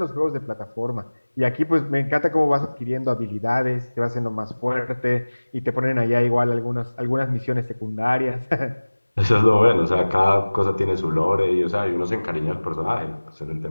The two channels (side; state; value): both; inverted; correlation -1.00